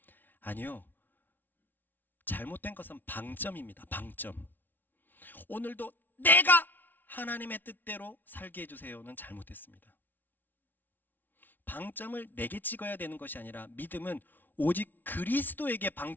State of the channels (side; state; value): right; late; 0.088 ms